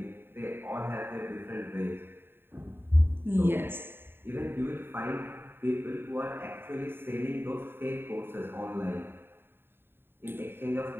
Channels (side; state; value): left; late; 0.11 ms